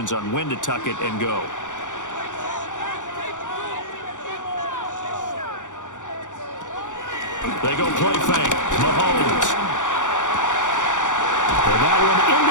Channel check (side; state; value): right; late; 0.86 ms